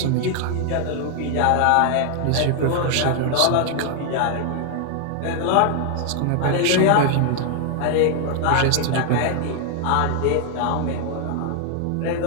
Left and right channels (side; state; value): both; different; correlation 0.00